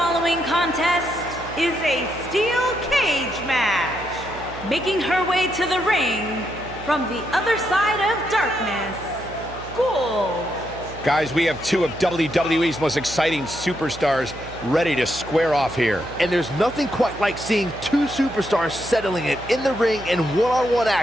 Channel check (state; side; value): noise; right; hum, 15 dB below the sound